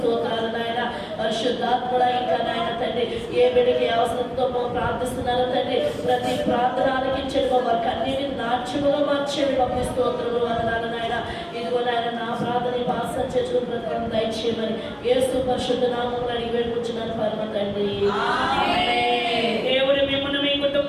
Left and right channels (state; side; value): identical; both; correlation 1.00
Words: నాయన పరిశుద్ధాత్ముడ ఇంకా నాయన తండ్రి ఏ బిడ్డకి అవసరంతో ప్రార్థిస్తున్నారో తండ్రి ప్రతి ప్రార్థన ఆలకించండి వారికి అన్నిటిని నాట్యముగా మార్చేది పంపి స్తోత్రములు వందనాలు నాయన. ఇదిగో నాయన నా ప్రార్థన భాష చేసిన ప్రకారం దయచేయమని యేసు పరిశుద్ధ నామములో అడిగి వేడుకుంటున్నాను పరమ తండ్రి. దేవుడు మిమ్మల్ని మీ